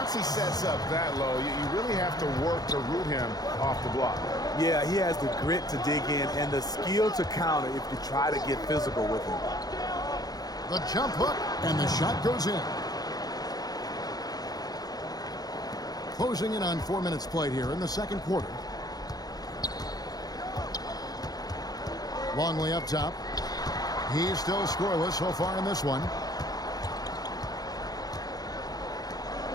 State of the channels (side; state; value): right; late; 0.19 ms